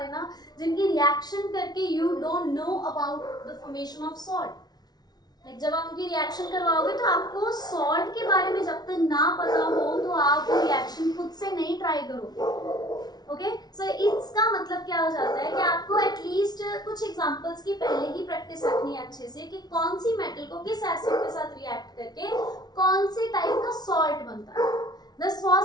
जिनकी रिएक्शन करके you don't know about the formation of salt. Like जब आप उनकी रिएक्शन करवाओगे तो आपको सॉल्ट के बारे में जब तक ना पता हो तो आप वो रिएक्शन खुद से नहीं ट्राई करोगे। ओके, सो इसका मतलब क्या हो जाता है कि आपको एटलीस्ट कुछ एग्जांपल्स की पहले ही प्रैक्टिस रखनी है अच्छे से कि कौन सी मेटल को किस एसिड के साथ रिएक्ट करके कौन से टाइप का सॉल्ट बनता है। This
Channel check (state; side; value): late; right; 0.19 ms